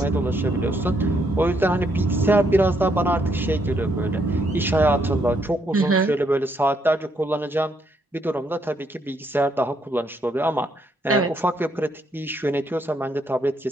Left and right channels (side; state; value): both; normal; correlation 0.74